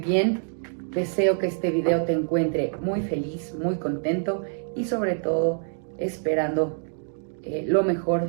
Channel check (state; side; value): silent; left; 61 dB below the other